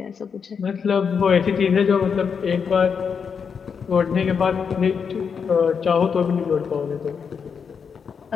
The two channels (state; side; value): quieter; right; 6.4 dB